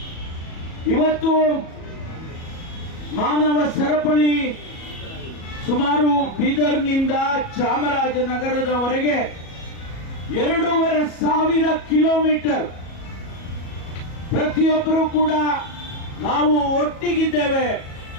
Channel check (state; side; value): late; right; 37 ms